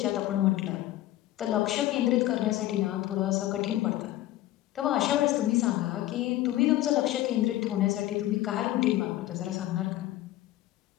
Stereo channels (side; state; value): right; quieter; 15.0 dB